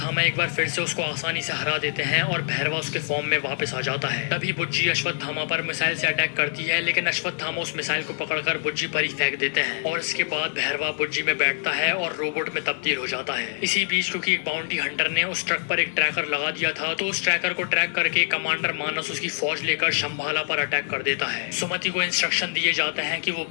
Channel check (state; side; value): silent; right; 62 dB below the other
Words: एक बार फिर से उसको आसानी से हरा देते हैं और भैरवा उसके फॉर्म में वापस आ जाता है। तभी बुज्जी अश्वत्थामा पर मिसाइल से अटैक करती है, लेकिन अश्वत्थामा उस मिसाइल को पकड़कर बुज्जी पर ही फेंक देते हैं और इसके बाद भैरवा बुज्जी में बैठता है और रोबोट में तब्दील हो जाता है। इसी बीच क्योंकि एक बाउंटी हंटर ने उस ट्रक पर एक ट्रैकर लगा दिया था, तो उस ट्रैकर को ट्रैक करके कमांडर मानस उसकी फौज लेकर शंभाला पर अटैक कर देता है। सुमति को इंस्ट्रक्शन दिए जाते हैं कि वो